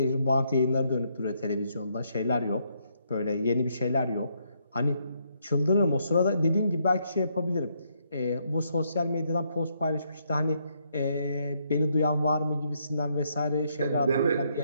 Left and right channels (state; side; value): inverted; both; correlation -0.74